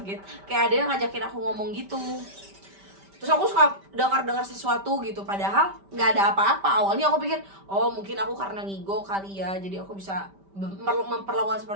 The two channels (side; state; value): left; late; 5.1 ms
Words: kayak ada yang ngajakin aku ngomong gitu. Terus aku suka dengar sesuatu gitu, padahal nggak ada apa-apa. Awalnya aku pikir mungkin aku karena ngigo kali ya, jadi aku bisa memperlakukan